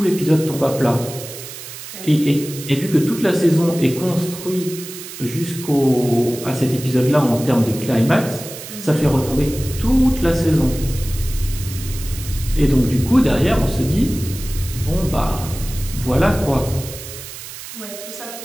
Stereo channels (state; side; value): noise; right; hiss, 12 dB below the sound